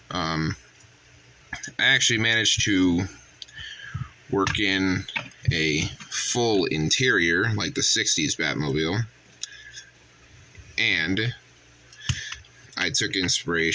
I actually managed to work in a full interior like the 60s Batmobile, and I took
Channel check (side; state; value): both; identical; correlation 1.00